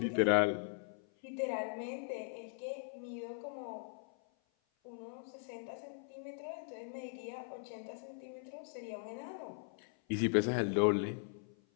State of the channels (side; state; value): right; silent; 51 dB below the other